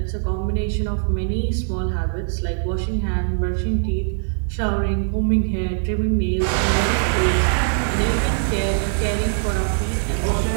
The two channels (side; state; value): left; silent; digital silence